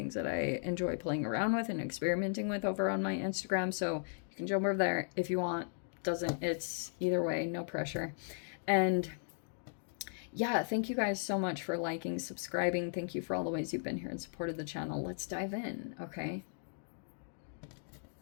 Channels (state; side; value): silent; right; digital silence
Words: that I enjoy playing around with and experimenting with over on my Instagram. So you can jump over there if you want. Doesn't, it's either way, no pressure. And yeah, thank you guys so much for liking, subscribing. Thank you for all the ways you've been here and supported the channel. Let's dive in, okay?